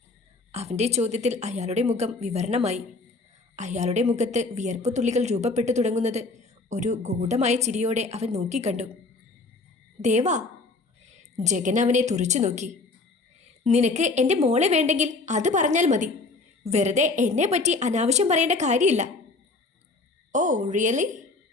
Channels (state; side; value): quieter; right; 3.6 dB